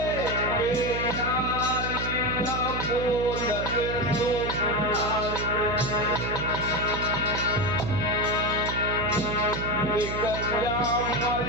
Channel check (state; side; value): noise; right; hum, 5 dB below the sound